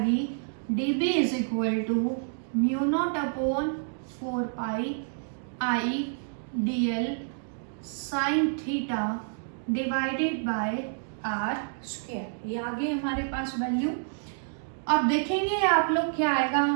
dB is equal to μ0/4π I dl sine theta divided by r²। ये आ गई हमारे पास वैल्यू। अब देखेंगे आप लोग क्या आएगा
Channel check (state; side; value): silent; left; digital silence